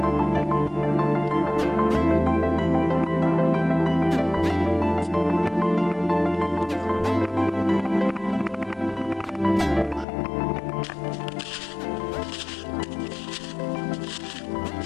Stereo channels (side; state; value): right; drops out; at 10.1 s